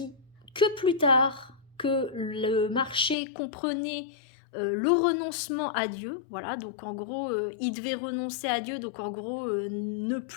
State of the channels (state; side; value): drops out; right; at 3.2 s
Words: que plus tard que le marché comprenait le renoncement à Dieu, voilà, donc en gros il devait renoncer à Dieu, donc en gros ne